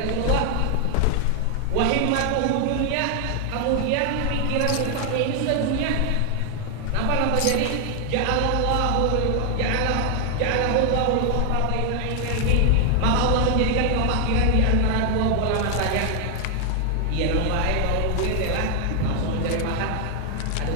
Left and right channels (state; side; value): different; both; correlation 0.00